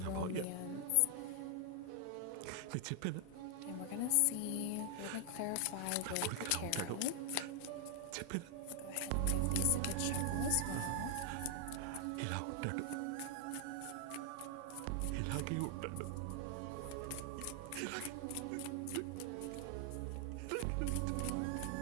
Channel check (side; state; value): both; different; correlation 0.00